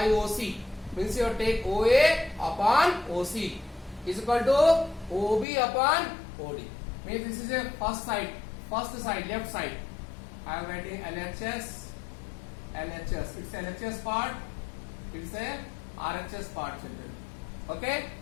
OC. Means you take OA upon OC is equal to OB upon OD. Means this is a first side, left side. I am writing LHS. It's LHS part. It's a RHS part children. Okay.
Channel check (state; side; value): drops out; right; at 5.5 s